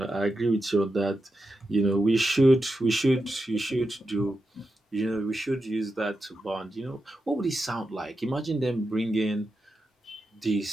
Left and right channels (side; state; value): both; normal; correlation 0.88